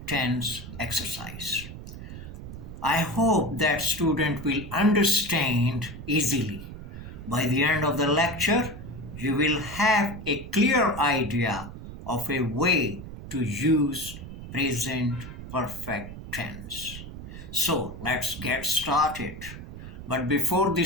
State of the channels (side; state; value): right; noise; rumble, 11 dB below the sound